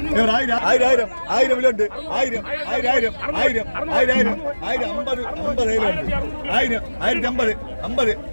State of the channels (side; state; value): both; inverted; correlation -1.00